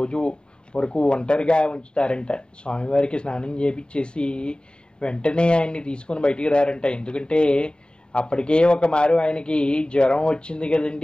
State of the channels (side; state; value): right; late; 0.050 ms